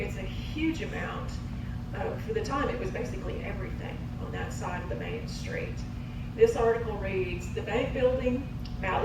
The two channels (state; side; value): identical; both; correlation 1.00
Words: a huge amount, for the time it was basically everything on that side of the Main Street. This article reads, the bank building,